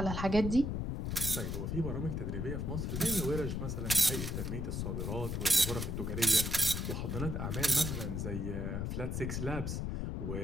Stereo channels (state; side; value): noise; left; rumble, 2 dB below the sound